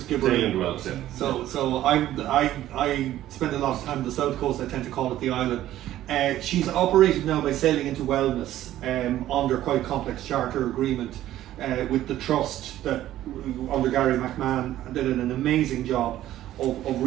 So I spend a lot of time on the south coast. I tend to call it the island. She's operated now by Sailing into Wellness under quite a complex charter agreement with the trust that under Gary McMahon did an amazing job of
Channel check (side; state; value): left; quieter; 13.5 dB